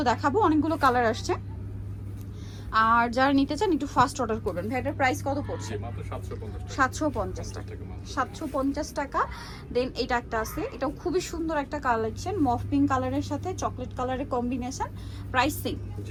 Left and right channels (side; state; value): both; identical; correlation 1.00